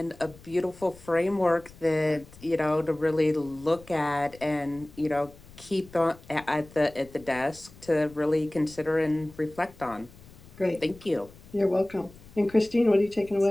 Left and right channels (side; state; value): left; noise; rumble, 22 dB below the sound